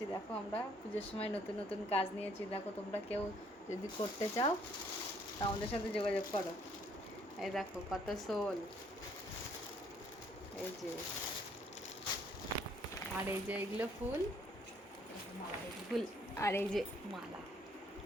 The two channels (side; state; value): both; normal; correlation 0.64